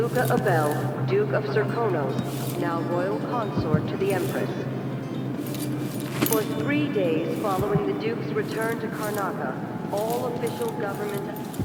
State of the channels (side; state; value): both; identical; correlation 1.00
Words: Abel, Duke of Serkonos, now royal consort to the Empress. For 3 days following the Duke's return to Karnaca, all official government